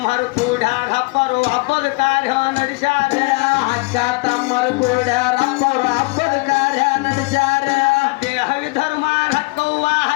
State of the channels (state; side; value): quieter; right; 26.8 dB